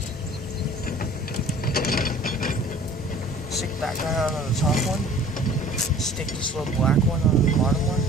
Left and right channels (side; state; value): both; normal; correlation 0.48